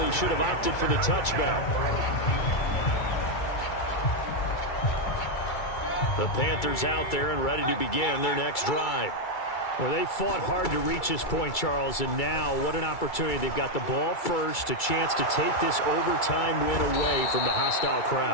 should have opted for the touchback. The Panthers out there and ready to begin their next drive. Well, they fought hard to reach this point, Charles, and now what an opportunity. They've got the ball first, a chance to take this overtime win away from the hostile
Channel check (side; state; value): right; late; 2.3 ms